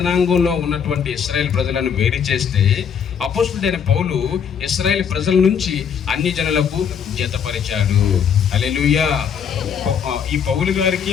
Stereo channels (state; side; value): quieter; right; 7.5 dB